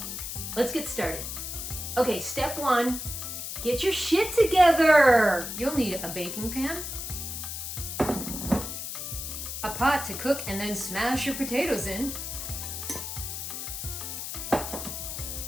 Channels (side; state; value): left; noise; hiss, 6 dB below the sound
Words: let's get started. Okay, step one, get your shit together. You'll need a baking pan, a pot to cook and then smash your potatoes in,